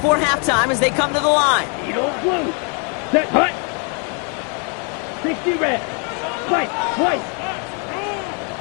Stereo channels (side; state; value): right; quieter; 36.7 dB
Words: halftime as they come to the line. Eagle blue. Set hut. 60 red. Fight twice.